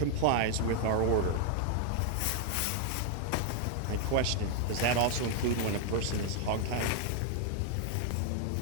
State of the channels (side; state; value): both; different; correlation 0.00